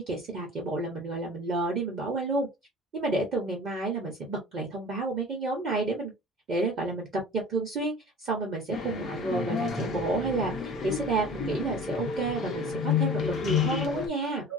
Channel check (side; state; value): both; normal; correlation 0.41